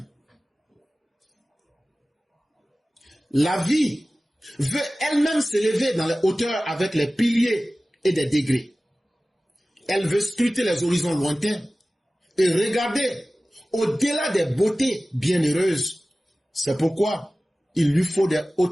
La vie veut elle-même s'élever dans les hauteurs avec les piliers et des degrés. Elle veut scruter les horizons lointains et regarder au-delà des beautés bienheureuses. C'est pourquoi il lui faut des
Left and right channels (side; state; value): both; normal; correlation 0.97